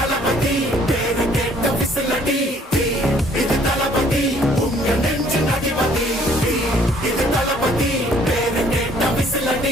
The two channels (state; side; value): normal; both; correlation 0.60